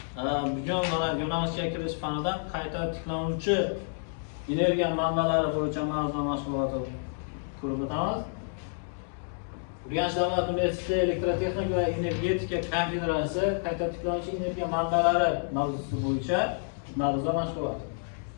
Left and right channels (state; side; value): silent; right; digital silence